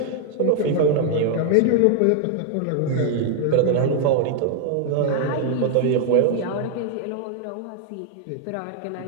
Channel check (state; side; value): different; both; correlation 0.00